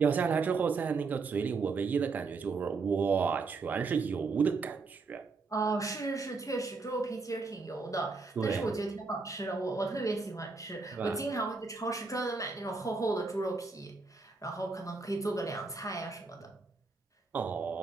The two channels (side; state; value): left; quieter; 4.3 dB